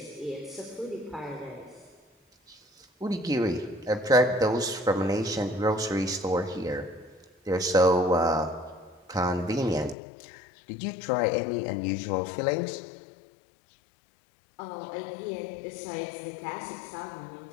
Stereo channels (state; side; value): drops out; right; at 10.0 s